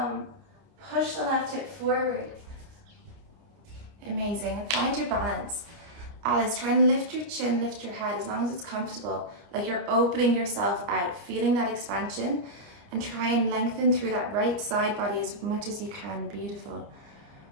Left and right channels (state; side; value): late; left; 29 ms